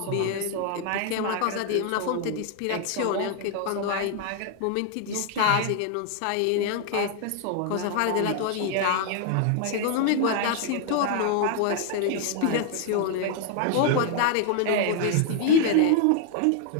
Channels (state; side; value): different; both; correlation 0.00